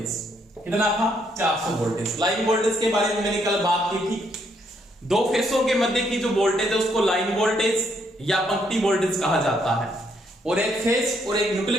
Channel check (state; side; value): normal; both; correlation 0.72